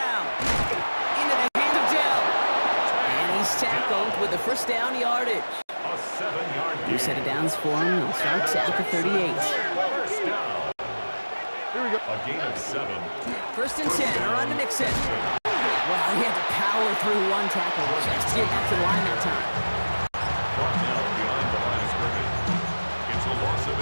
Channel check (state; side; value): inverted; both; correlation -1.00